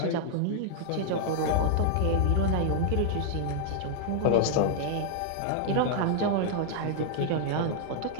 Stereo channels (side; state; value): both; different; correlation -0.01